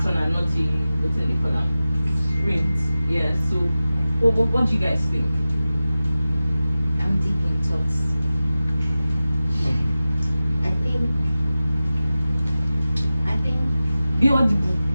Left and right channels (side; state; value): both; inverted; correlation -0.95